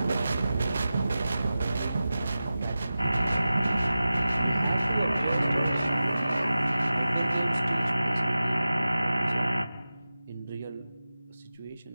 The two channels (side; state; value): both; inverted; correlation -0.94